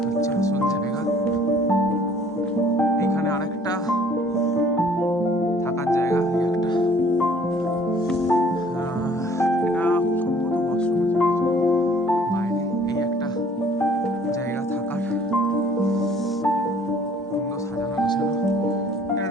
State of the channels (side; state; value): both; normal; correlation 0.56